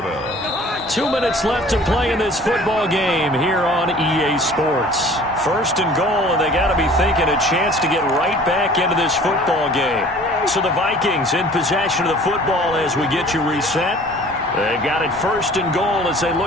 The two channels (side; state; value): both; normal; correlation 0.48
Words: 2 minutes left to play in this football game here on EA Sports. First and goal, and they got to be thinking a chance to get right back into this football game. So the Vikings in possession of the football as we get you reset. They've got it first and goal as they